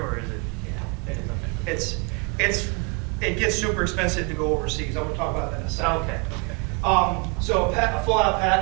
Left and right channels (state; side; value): quieter; left; 31.4 dB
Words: or is it? Yeah, it is. Okay. It gets super expensive to go overseas. I'm going to talk about that in a second. Oh, okay. So a full-out